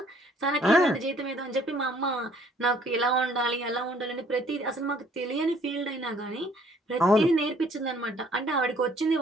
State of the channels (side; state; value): both; normal; correlation 0.60